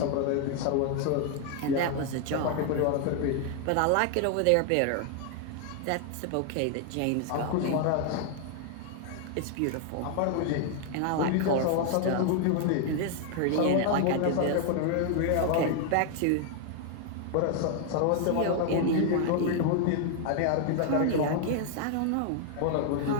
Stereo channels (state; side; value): different; both; correlation 0.00